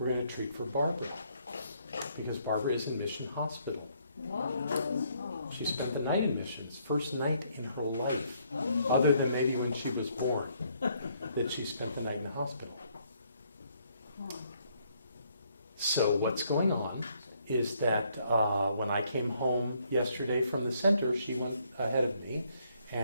going to treat for Barbara, because Barbara is in Mission Hospital. Wow. She spent the night in missions, first night in her life, other than maybe when she was born, that she spent the night in the hospital. So what's going on is that when I came home yesterday from the center, she went ahead of me,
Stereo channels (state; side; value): inverted; both; correlation -0.70